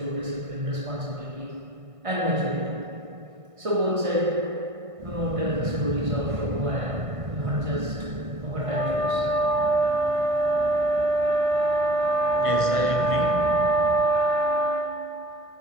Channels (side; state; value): left; late; 1.5 ms